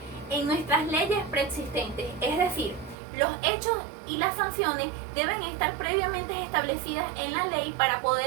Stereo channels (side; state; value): left; drops out; at 3.0 s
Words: en nuestras leyes preexistentes. Es decir, los hechos y las sanciones deben estar previamente establecidas en la ley para